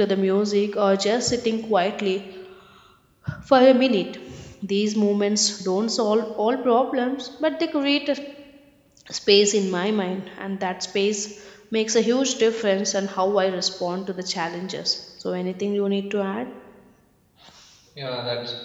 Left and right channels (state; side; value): identical; both; correlation 1.00